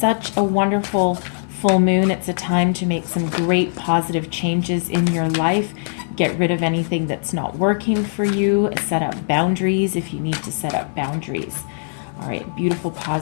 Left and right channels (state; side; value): silent; right; digital silence